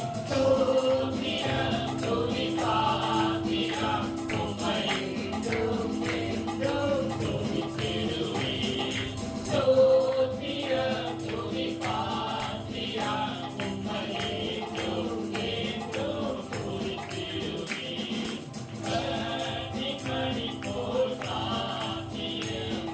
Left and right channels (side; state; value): both; identical; correlation 1.00